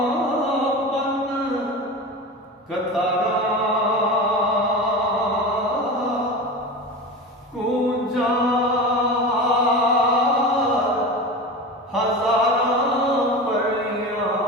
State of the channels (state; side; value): normal; both; correlation 0.28